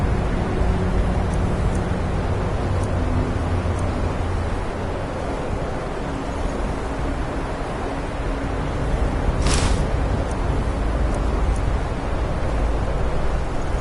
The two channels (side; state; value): both; identical; correlation 1.00